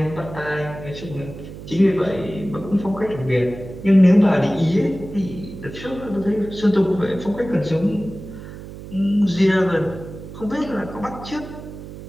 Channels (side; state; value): right; noise; hum, 13 dB below the sound